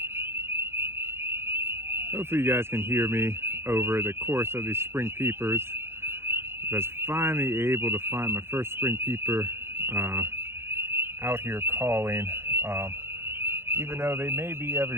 Hopefully you guys can hear me over the chorus of these spring peepers. I was finally able to find my first spring peeper out here calling. Even though they may be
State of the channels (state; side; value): late; left; 0.12 ms